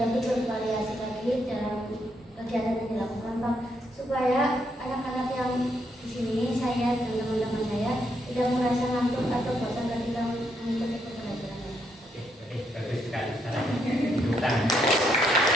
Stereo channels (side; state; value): both; normal; correlation 0.76